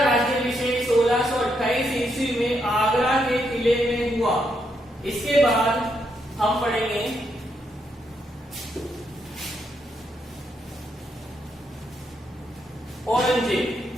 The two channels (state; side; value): normal; both; correlation 0.78